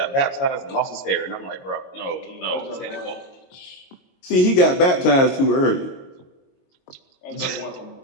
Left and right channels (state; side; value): late; right; 22 ms